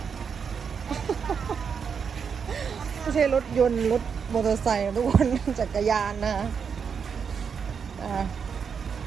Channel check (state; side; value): quieter; left; 6.5 dB